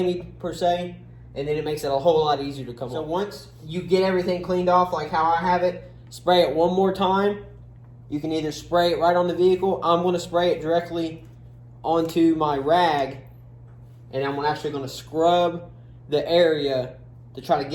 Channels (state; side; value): identical; both; correlation 1.00